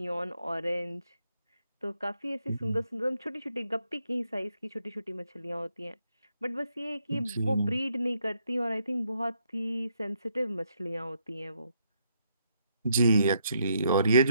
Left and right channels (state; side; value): inverted; both; correlation -0.75